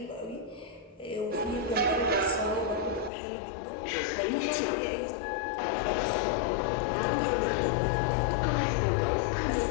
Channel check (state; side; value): drops out; right; at 3.1 s